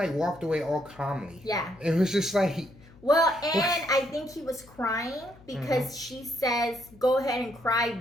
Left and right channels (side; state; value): left; noise; hum, 24 dB below the sound